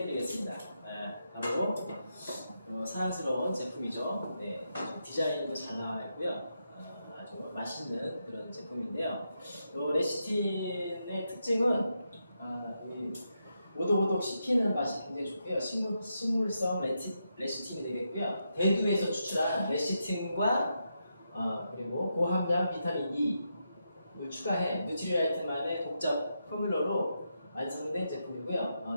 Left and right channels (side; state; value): both; inverted; correlation -0.84